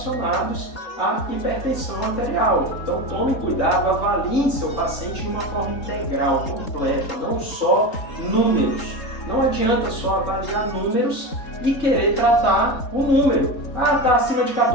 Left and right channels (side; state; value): right; late; 3.7 ms